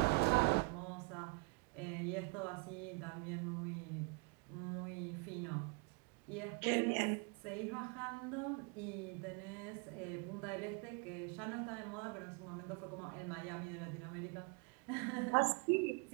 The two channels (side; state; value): left; quieter; 30.2 dB